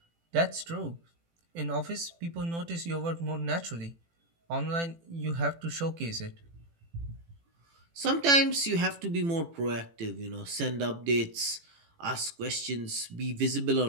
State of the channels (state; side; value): late; left; 18 ms